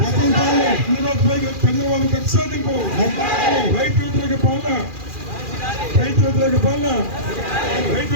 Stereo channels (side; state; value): left; late; 2.4 ms